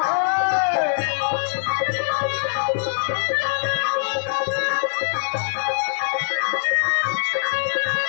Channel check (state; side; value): silent; right; 64 dB below the other